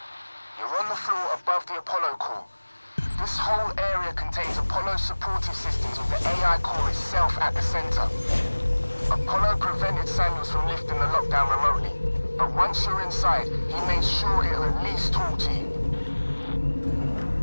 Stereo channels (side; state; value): both; inverted; correlation -1.00